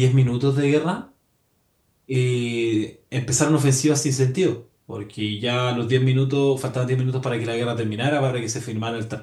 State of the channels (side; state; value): both; identical; correlation 1.00